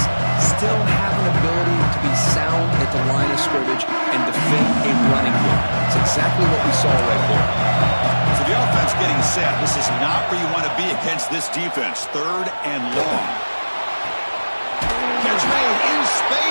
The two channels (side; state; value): both; inverted; correlation -1.00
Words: still have an ability to be sound at the line of scrimmage and defend a running game. It's exactly what we saw right there. So the offense getting set. This is not where you want to be against this defense. Third and long. Catch made in